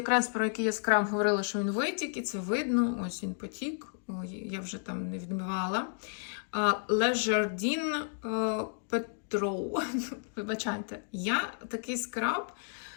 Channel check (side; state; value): right; silent; digital silence